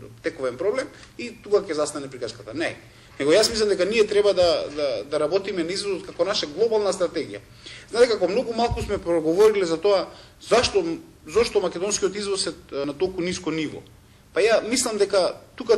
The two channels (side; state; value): both; identical; correlation 1.00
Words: тековен проблем и тука ќе застане приказката. Не. Него јас мислам дека ние треба да работиме на извозот како наша глобална стратегија. Знаете како многу малку сме проговориле за тоа зашто македонскиот извоз е на толку ниско ниво. Па ја мислам дека тука